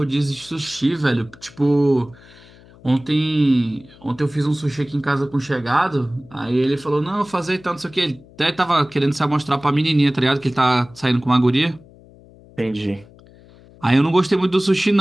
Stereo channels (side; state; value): left; noise; hum, 24 dB below the sound